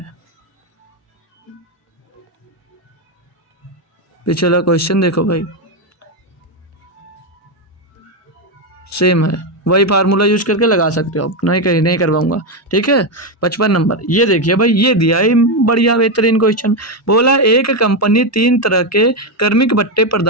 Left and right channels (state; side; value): normal; both; correlation 0.07